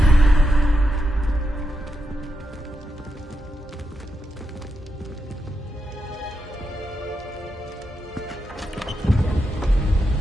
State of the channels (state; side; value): normal; both; correlation 0.85